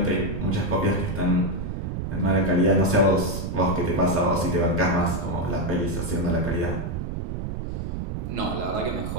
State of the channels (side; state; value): right; noise; rumble, 4 dB below the sound